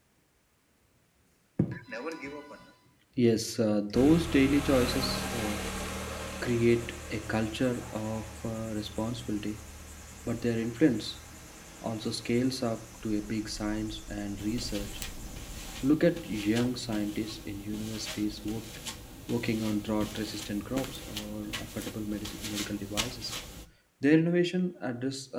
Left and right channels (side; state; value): both; identical; correlation 1.00